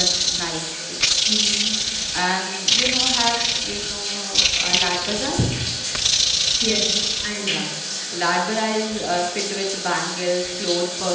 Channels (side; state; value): both; identical; correlation 1.00